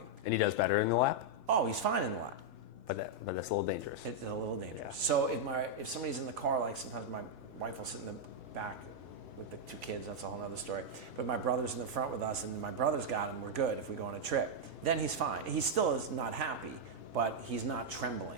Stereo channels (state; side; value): normal; both; correlation -0.02